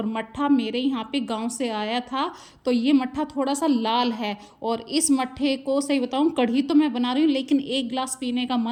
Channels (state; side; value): identical; both; correlation 1.00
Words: मट्ठा मेरे यहाँ पे गांव से आया था, तो ये मट्ठा थोड़ा सा लाल है। और इस मट्ठे को सही बताऊँ, कढ़ी तो मैं बना रही हूँ लेकिन एक गिलास पीने का